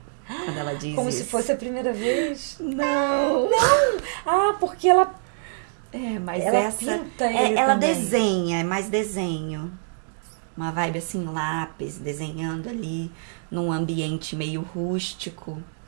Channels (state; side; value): silent; left; digital silence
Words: Quando ela diz Como isso. se fosse a primeira vez? Não! Ah, porque ela mas ela essa... pinta ele ela também. desenha, é mais desenho. Uma vibe assim, lápis, desenhando ali num ambiente meio rústico,